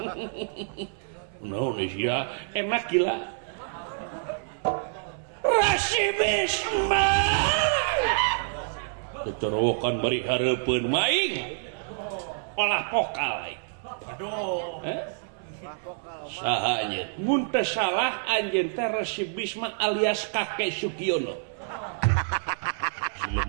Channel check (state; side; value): silent; left; 59 dB below the other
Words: no ya enak gila rasibisme keterowokan bari hareupeun maing olah pokal aduh saha ieu mun teh salah anjeun teh rasibisme alias kakek Sugiono